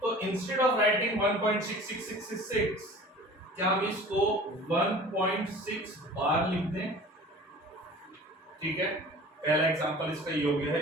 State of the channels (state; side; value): normal; both; correlation 0.43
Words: इंस्टेड ऑफ राइटिंग 1.66666 क्या हम इसको 1.6 बार लिख दें, ठीक है। पहला एग्जांपल इसका योग्य